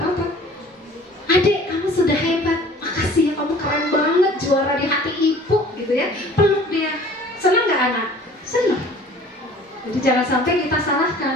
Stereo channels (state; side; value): normal; both; correlation 0.49